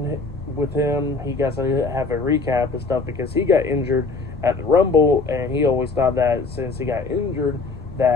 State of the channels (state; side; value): quieter; right; 4.0 dB